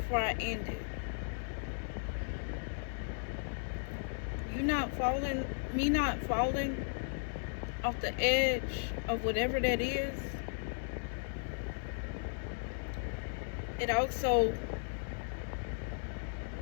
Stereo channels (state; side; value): silent; right; digital silence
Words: I end it. You not falling, me not falling off the edge of whatever that is. It also